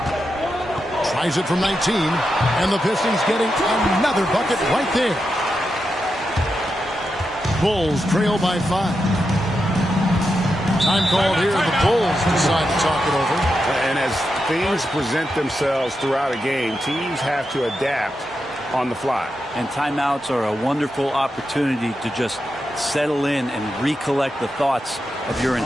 Tries it from 19. And the Pistons getting another bucket right there. Bulls trail by 5. Time called here. The Bulls decide to talk it over. And as things present themselves throughout a game, teams have to adapt on the fly. And timeouts are a wonderful opportunity to just settle in and recollect the thoughts of your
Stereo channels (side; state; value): both; normal; correlation 0.87